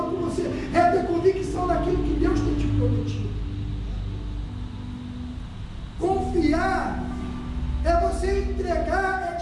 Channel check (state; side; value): identical; both; correlation 1.00